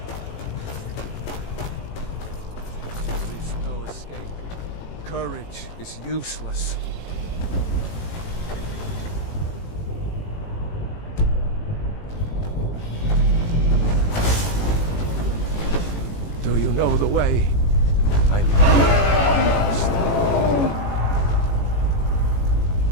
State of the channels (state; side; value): late; right; 18 ms